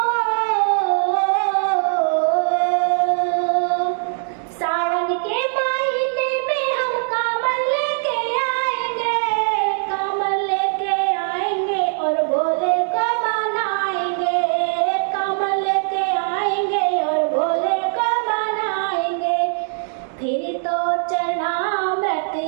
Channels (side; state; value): left; silent; digital silence